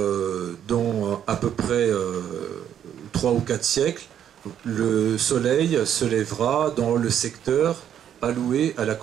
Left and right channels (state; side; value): quieter; left; 9.7 dB